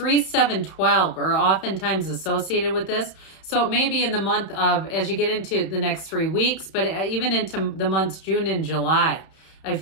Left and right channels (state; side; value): late; right; 31 ms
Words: 7, 12 are oftentimes associated with this. So it may be in the month of, as you get into the next 3 weeks, but even into the months June and July, I